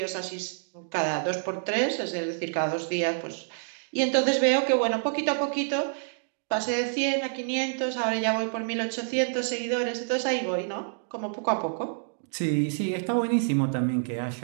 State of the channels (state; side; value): silent; left; digital silence